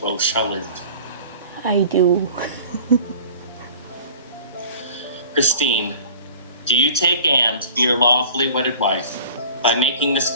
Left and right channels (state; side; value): inverted; both; correlation -0.45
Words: shall live? I do. Christine, do you take Anne to be your lawfully wedded wife? By making this